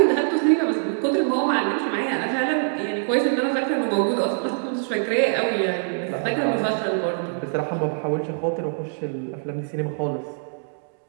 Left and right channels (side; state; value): left; silent; digital silence